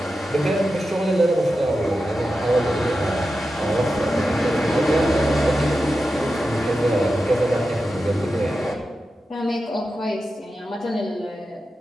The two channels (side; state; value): both; normal; correlation 0.91